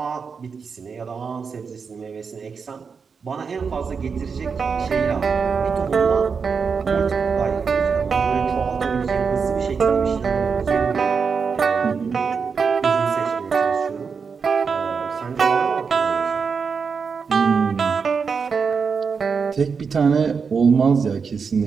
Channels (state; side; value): quieter; left; 5.7 dB